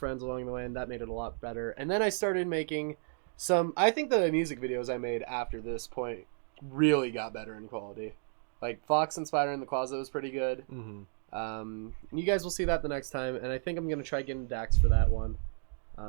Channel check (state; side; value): silent; left; digital silence